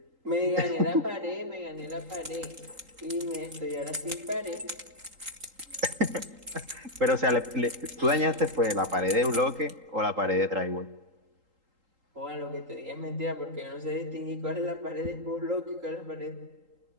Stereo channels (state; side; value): late; left; 3.8 ms